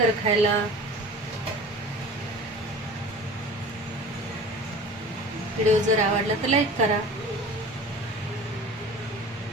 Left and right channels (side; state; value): both; normal; correlation 0.40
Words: खायला। व्हिडिओ जर आवडला तर लाईक करा।